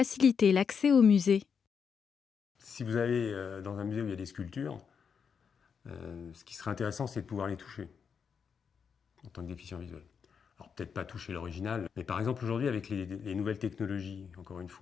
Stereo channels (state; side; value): quieter; right; 6.5 dB